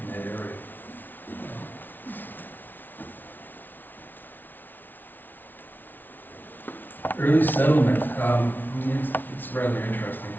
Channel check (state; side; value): late; right; 0.089 ms